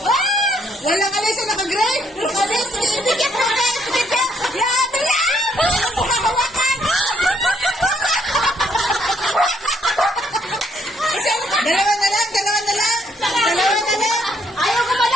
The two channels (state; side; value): normal; both; correlation 0.71